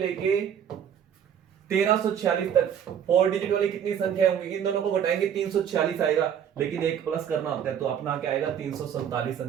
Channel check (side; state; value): left; quieter; 8.8 dB